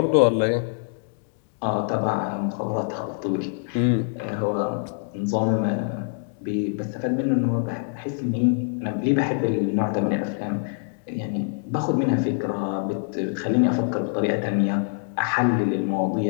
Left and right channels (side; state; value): right; silent; digital silence